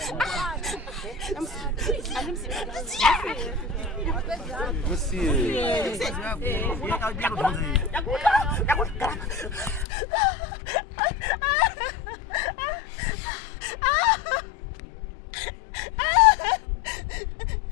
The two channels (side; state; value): right; drops out; at 9.9 s